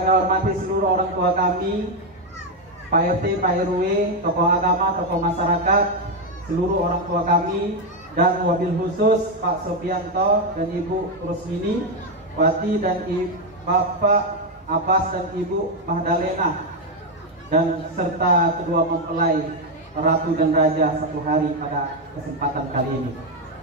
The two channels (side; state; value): both; normal; correlation 0.05